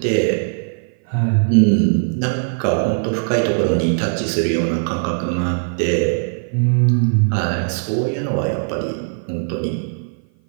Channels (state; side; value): silent; left; 55 dB below the other